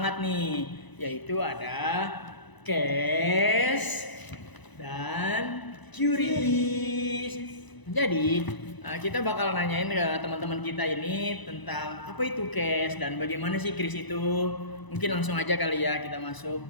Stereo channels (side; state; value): right; late; 1.0 ms